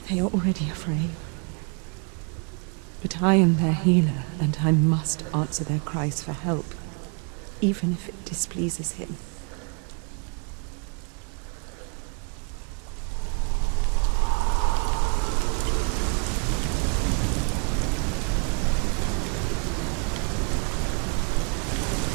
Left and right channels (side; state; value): left; quieter; 36.2 dB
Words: they are already afraid. But I am their healer, and I must answer their cries for help, even if it displeases him.